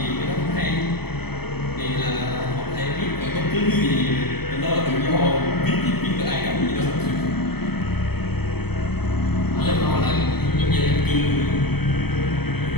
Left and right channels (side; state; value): right; late; 0.97 ms